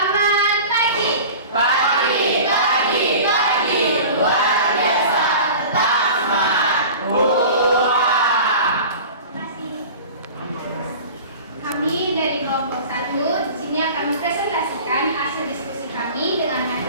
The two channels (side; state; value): both; inverted; correlation -0.38